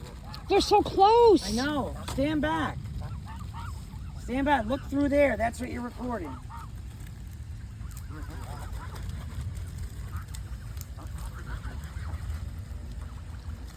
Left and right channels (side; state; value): both; identical; correlation 1.00